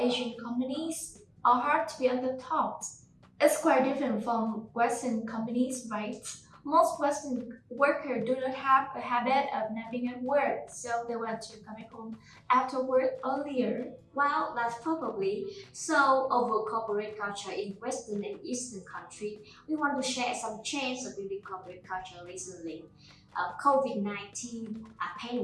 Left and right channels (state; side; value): identical; both; correlation 1.00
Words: companies are hard to be on the top. It's quite different from Western companies, right? Most Western workers do not have a habit of napping at work, so they want to come back home after work earlier. Well, that's probably so over corporate culture in Western and Eastern country. We want to share some change of building corporate culture recently. COVID-19